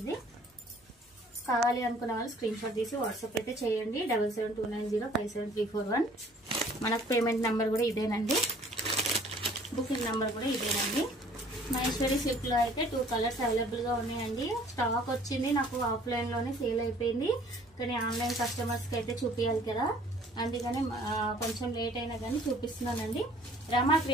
కావాలి అనుకున్న వాళ్ళు స్క్రీన్ షాట్ తీసి వాట్సాప్ అయితే చేయండి. 7729057341. మనకు పేమెంట్ నెంబర్ కూడా ఇదేనండి, బుకింగ్ నెంబర్ కూడా ఇదేనండి. మహేశ్వరి సిల్క్ లో అయితే 2 కలర్స్ అవైలబుల్ గా ఉన్నాయండి. స్టాక్ వచ్చింది, నాకు ఆఫ్లైన్ లోనే సేల్ అయిపోయింది. కానీ ఆన్లైన్ కస్టమర్స్ కి అయితే చూపించాలి కదా, అందుకని కొంచెం లేట్ అయినా కానీ చూపిస్తున్నానండి. రమా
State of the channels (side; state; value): both; normal; correlation 0.55